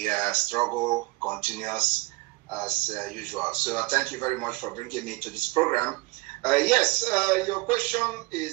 struggle continues as usual. So thank you very much for bringing me to this program. Yes, your question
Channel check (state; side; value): quieter; left; 24.0 dB